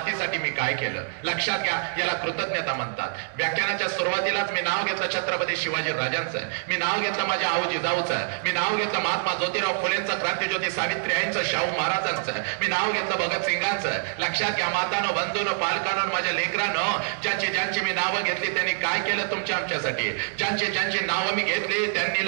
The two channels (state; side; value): silent; left; digital silence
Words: मी काय केलं. लक्षात घ्या, याला कृतज्ञता म्हणतात. व्याख्यानाच्या सुरुवातीलाच मी नाव घेतलं छत्रपती शिवाजी राजांचं, मी नाव घेतलं माझ्या आऊ जिजाऊचं, मी नाव घेतलं महात्मा ज्योतिराव फुलेंचं, फुलेंचं, क्रांतिज्योती सावित्रीबाईंचं, शाहू महाराजांचं, मी नाव घेतलं भगतसिंगांचं. लक्षात घ्या मातानो, बंधूनो, पालकांनो, माझ्या लेकरांनो, ज्यांची मी नावं घेतली त्यांनी काय केलं तुमच्या आमच्यासाठी. ज्यांची नावं मी घेतली त्यांनी